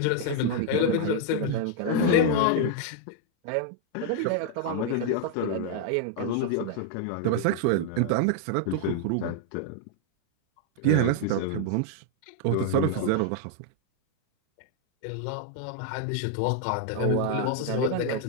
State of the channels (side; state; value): both; different; correlation 0.00